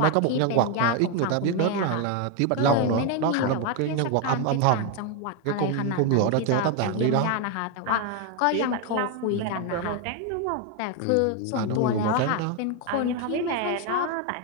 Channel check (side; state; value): both; different; correlation 0.01